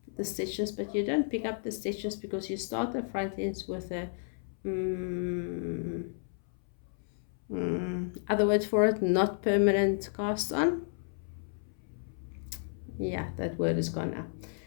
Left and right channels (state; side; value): silent; right; 56 dB below the other